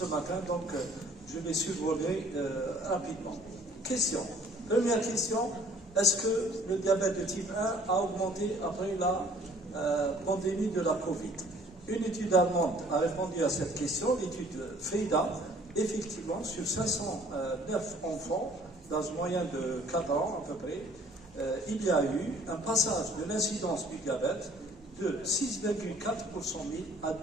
matin, donc je vais survoler rapidement. Question. Première question, est-ce que le diabète de type 1 a augmenté après la pandémie de la Covid? Une étude allemande a répondu à cette question, l'étude FEIDA. Effectivement, sur 509 enfants, dans une moyenne de 4 ans à peu près, il y a eu un passage de l'incidence du diabète de 6,4 pour 100 000 à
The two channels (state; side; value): normal; both; correlation 0.56